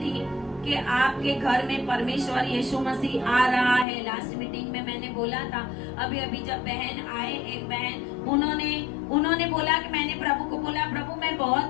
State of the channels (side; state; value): right; drops out; at 3.9 s